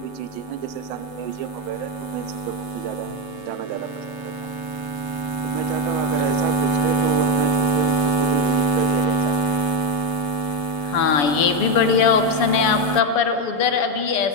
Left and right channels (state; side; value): late; right; 6.9 ms